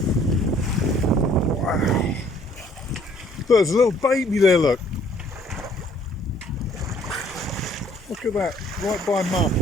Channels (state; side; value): normal; both; correlation 0.60